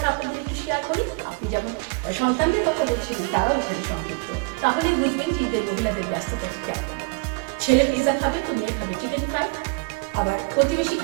আপনাদের একটু শেয়ার করি। আপনি যেমন সন্তানদের কথা বলছিলেন, তারাও এখানে সংযুক্ত, তাহলে বুঝবেন যে ঈদের মহিলাদের ব্যস্ততা কেমন। ছেলে পিৎজা খাবে তো মেয়ে খাবে চিকেন ফ্রাই, আবার প্রতিবেশী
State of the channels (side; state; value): left; quieter; 29.5 dB